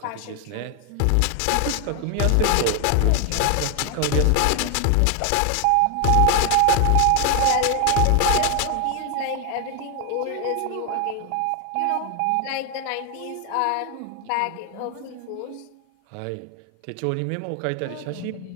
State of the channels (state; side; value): different; both; correlation 0.00